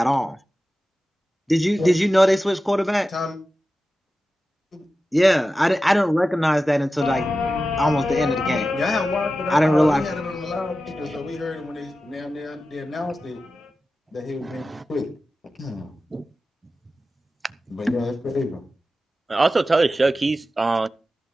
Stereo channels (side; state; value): both; normal; correlation 0.93